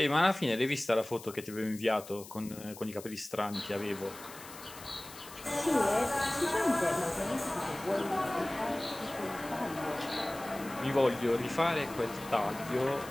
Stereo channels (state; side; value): noise; left; hiss, 16 dB below the sound